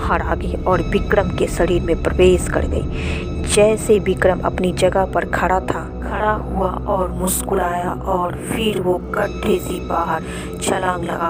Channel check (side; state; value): both; identical; correlation 1.00